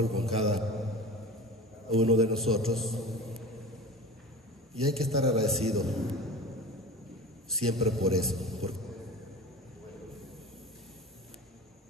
con cada uno de nosotros, y hay que estar agradecido siempre por eso, porque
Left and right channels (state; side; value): normal; both; correlation 0.34